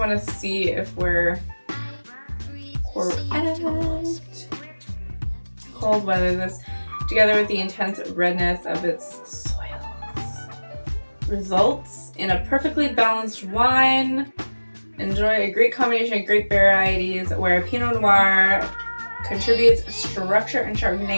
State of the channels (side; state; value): both; inverted; correlation -1.00